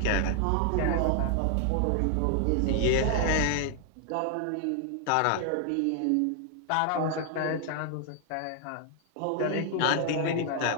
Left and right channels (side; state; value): both; different; correlation 0.00